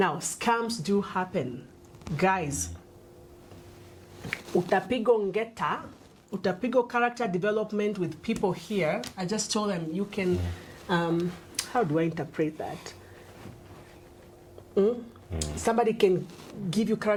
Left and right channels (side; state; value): both; identical; correlation 1.00